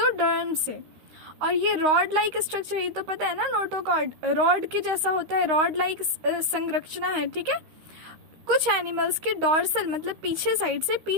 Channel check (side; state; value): left; late; 13 ms